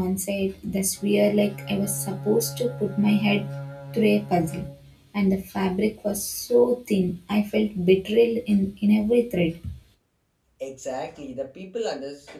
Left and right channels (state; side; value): identical; both; correlation 1.00